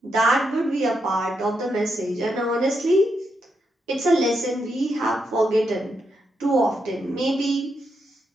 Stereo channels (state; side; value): normal; both; correlation 0.82